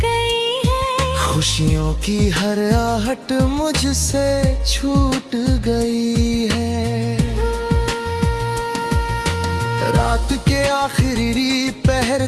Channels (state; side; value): identical; both; correlation 1.00